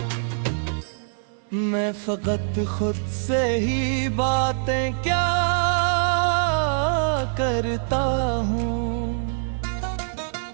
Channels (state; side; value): silent; left; digital silence